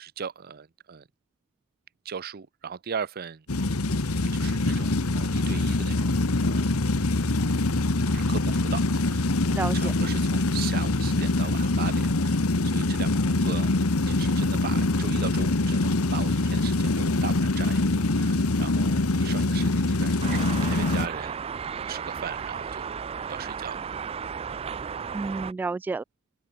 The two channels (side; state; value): both; normal; correlation 0.49